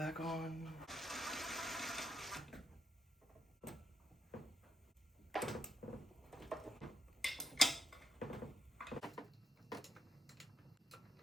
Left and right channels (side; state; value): both; normal; correlation 0.70